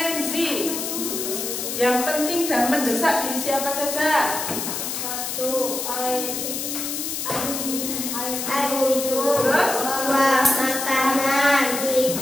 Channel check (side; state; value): left; noise; hiss, 4 dB below the sound